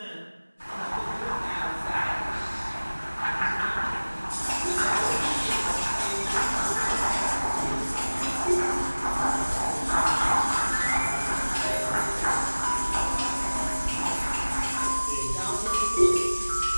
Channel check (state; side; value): inverted; both; correlation -1.00